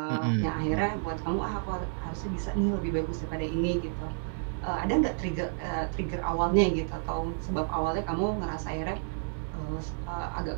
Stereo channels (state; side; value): silent; left; digital silence